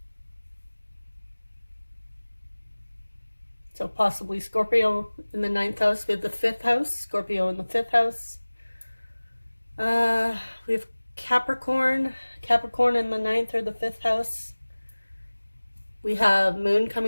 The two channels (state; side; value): inverted; both; correlation -1.00